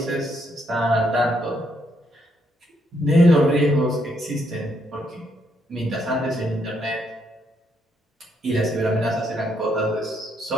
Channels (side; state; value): both; normal; correlation 0.75